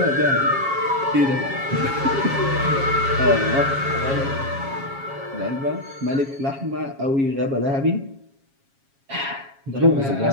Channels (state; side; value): late; left; 7.3 ms